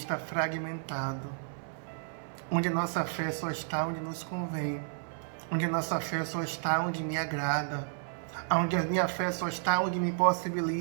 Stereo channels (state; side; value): silent; left; digital silence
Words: fragmentado, onde a nossa fé só está onde nos convém, onde a nossa fé só está onde me agrada, onde a minha fé só está onde me